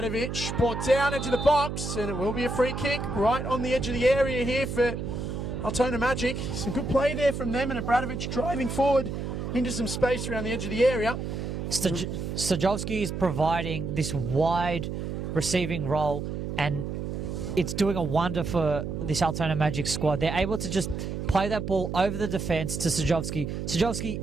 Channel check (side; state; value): right; noise; hum, 4 dB below the sound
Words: Brought down into the box. And it will be a free kick right on the edge of the area here for Altona Magic. Some good play there from them, and Bradovic driving forward into some space around the edge of the area. Stajovski is providing this wide receiving role, and it's doing a wonder for this Altona Magic squad. They're able to just play that ball over the defence to Stajovski. Stajovski